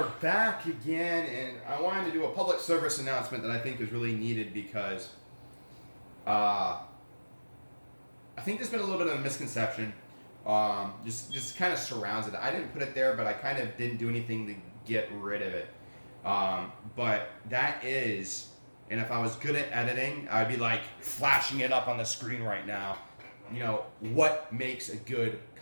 back again, and I wanted to do a public service announcement that I think is really needed because I think there's been a little bit of a misconception, just kind of surrounds it. I didn't put it there, but I kind of didn't do anything to get rid of it. But that is, and if I was good at editing, I'd be like flashing it up on the screen right now. You know, what makes a good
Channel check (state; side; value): inverted; both; correlation -1.00